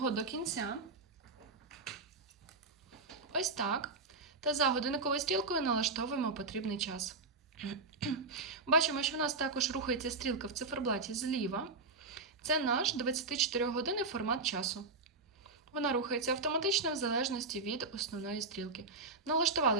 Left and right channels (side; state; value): left; quieter; 3.7 dB